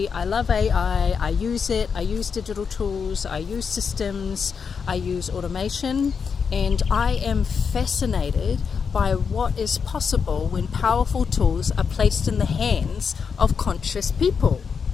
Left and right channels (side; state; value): right; quieter; 6.1 dB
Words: I love AI, I use it, I use digital tools, I use systems, I use automation, and I am fascinated by what is possible when powerful tools are placed in the hands of conscious people.